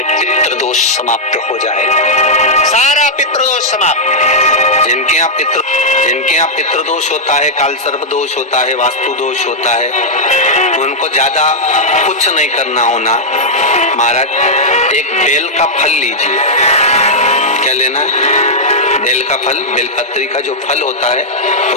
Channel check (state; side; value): normal; both; correlation -0.06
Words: पितृदोष समाप्त हो जाएगा, सारा पितृदोष समाप्त। जिनके यहाँ पितृदोष होता है, काल सर्प दोष होता है, वास्तु दोष होता है, उनको ज्यादा कुछ नहीं करना होना। महाराज एक बेल का फल लीजिए। क्या लेना है? बेल का फल, बेलपत्री का जो फल होता है